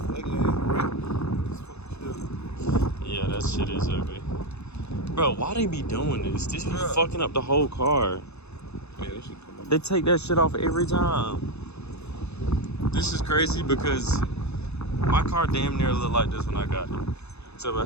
ugly ass red. It's fucking shit. Yeah, that shit is ugly. Bro, why they be doing this? This be Bruh. fucking up the whole car. Yeah, that shit come up. They take that shit off every time. This is crazy because my car damn near looked like this when I got it. Except I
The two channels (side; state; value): right; late; 0.80 ms